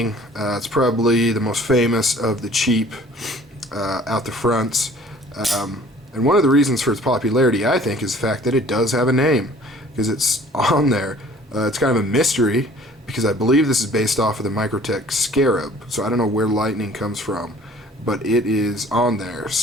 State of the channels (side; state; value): both; normal; correlation 0.52